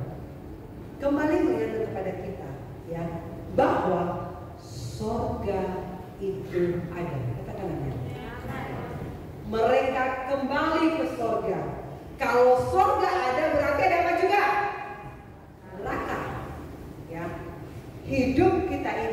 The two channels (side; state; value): both; identical; correlation 1.00